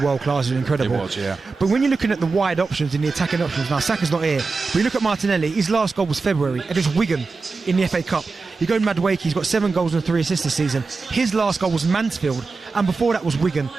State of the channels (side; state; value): left; quieter; 4.2 dB